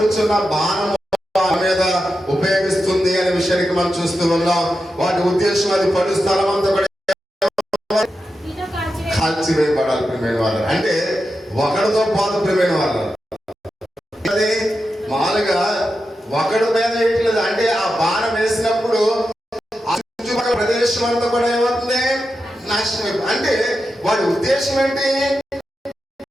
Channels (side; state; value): both; normal; correlation 0.89